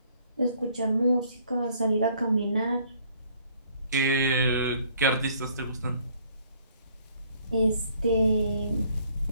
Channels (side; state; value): both; inverted; correlation -0.61